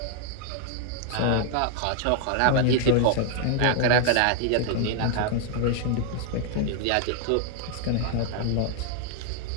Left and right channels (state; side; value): different; both; correlation 0.00